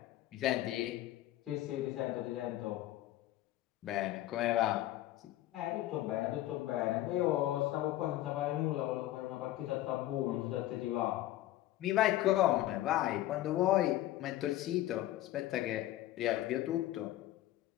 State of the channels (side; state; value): right; quieter; 14.7 dB